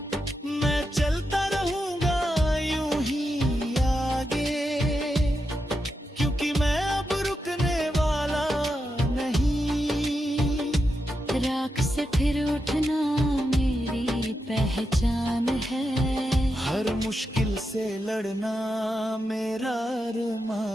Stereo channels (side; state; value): both; normal; correlation 0.86